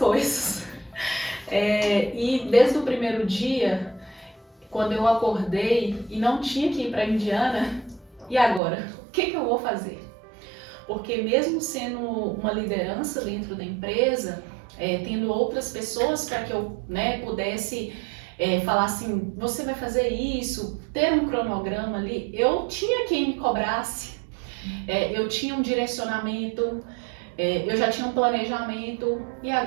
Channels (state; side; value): drops out; left; at 8.6 s